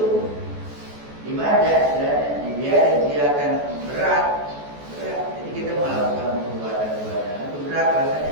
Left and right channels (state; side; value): late; left; 14 ms